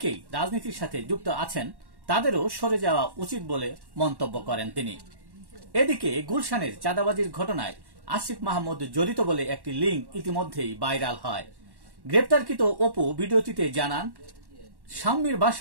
রাজনীতির সাথে যুক্ত আছেন, তাদেরও সরে যাওয়া উচিত বলে মন্তব্য করেন তিনি। এদিকে গুলশানের চাঁদাবাজির ঘটনায় আসিফ মাহমুদ জড়িত বলে একটি লিঙ্ক ইতিমধ্যেই ভাইরাল হয়। গ্রেপ্তারকৃত অপু ভিডিওটিতে জানান, স্বামীর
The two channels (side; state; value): left; late; 1.1 ms